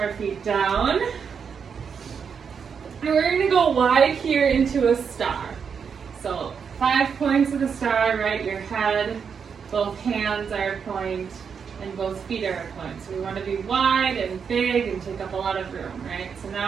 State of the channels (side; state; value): left; quieter; 6.5 dB